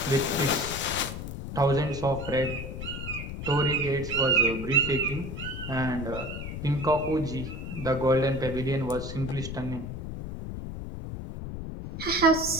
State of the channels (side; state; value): left; noise; rumble, 7 dB below the sound